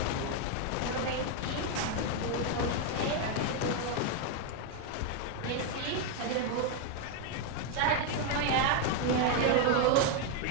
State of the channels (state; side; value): different; both; correlation 0.01